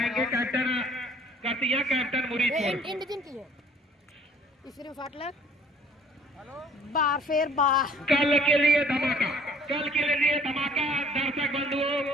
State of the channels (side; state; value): both; normal; correlation 0.55